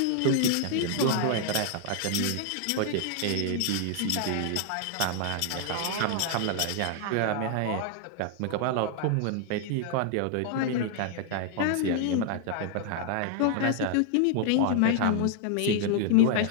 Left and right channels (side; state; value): both; different; correlation 0.00